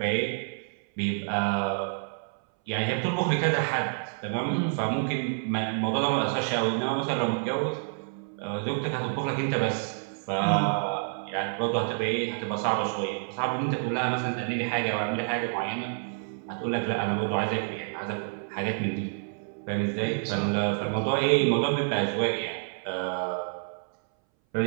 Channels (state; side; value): silent; left; 59 dB below the other